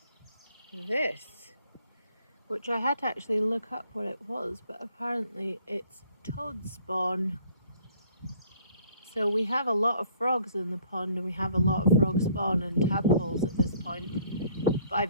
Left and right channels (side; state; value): both; inverted; correlation -0.59